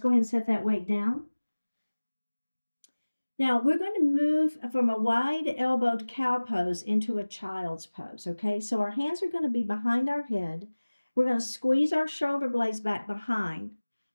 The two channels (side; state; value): both; inverted; correlation -1.00